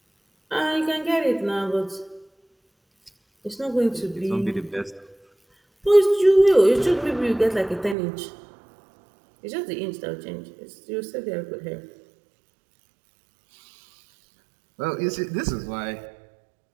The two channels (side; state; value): left; drops out; at 8.0 s